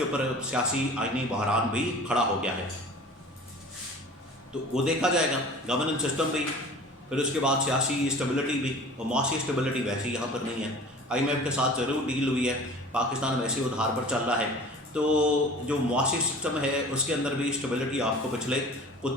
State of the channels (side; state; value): both; normal; correlation 0.42